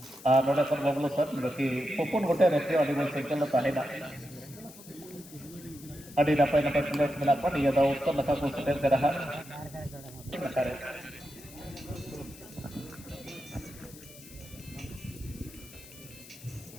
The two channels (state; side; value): noise; left; hiss, 18 dB below the sound